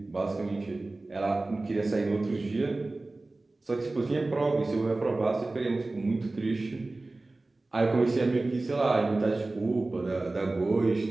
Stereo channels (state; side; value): quieter; left; 3.1 dB